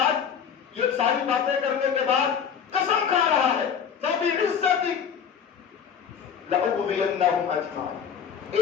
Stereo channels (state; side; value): quieter; right; 7.5 dB